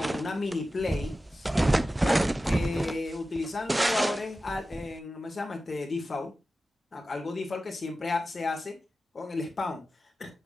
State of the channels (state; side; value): normal; both; correlation 0.94